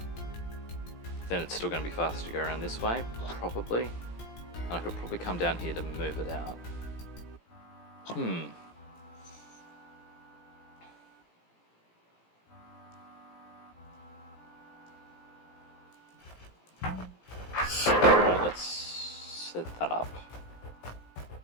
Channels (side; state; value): right; late; 17 ms